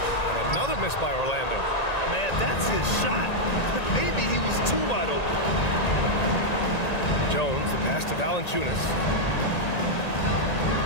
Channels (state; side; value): late; right; 1.9 ms